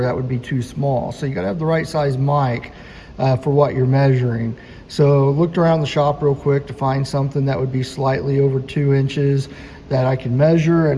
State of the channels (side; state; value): both; identical; correlation 1.00